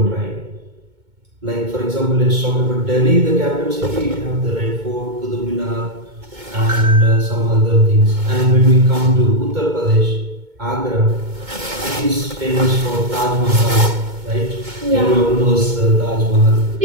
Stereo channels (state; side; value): late; left; 2.2 ms